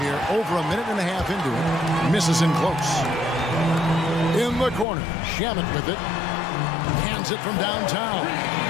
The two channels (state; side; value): drops out; right; at 4.9 s